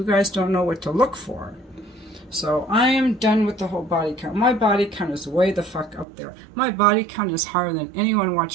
guys don't know what to look for. So I am done with the whole body count. My body count is way the fuck up there. My body count is higher than anyone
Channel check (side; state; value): left; drops out; at 6.1 s